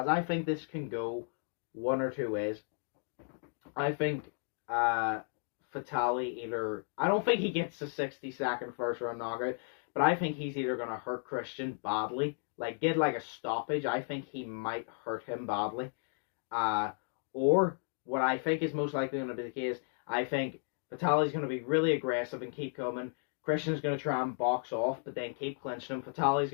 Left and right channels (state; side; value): silent; right; 55 dB below the other